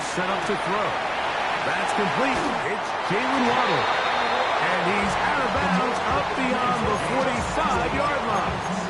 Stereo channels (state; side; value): identical; both; correlation 1.00